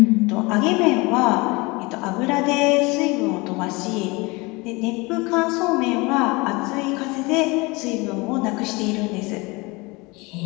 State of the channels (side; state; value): right; quieter; 25.1 dB